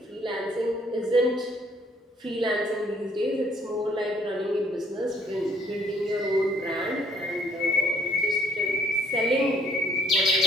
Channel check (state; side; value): normal; both; correlation 0.63